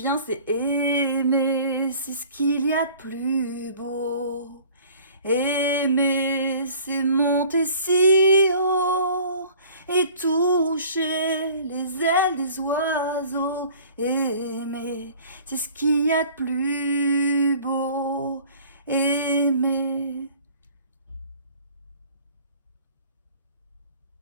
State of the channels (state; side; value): inverted; both; correlation -0.49